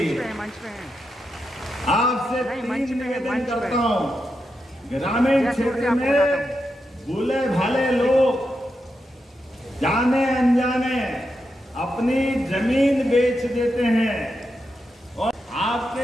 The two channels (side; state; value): both; normal; correlation 0.86